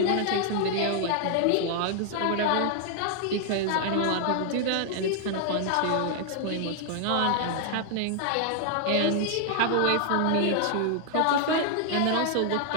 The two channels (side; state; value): both; different; correlation 0.00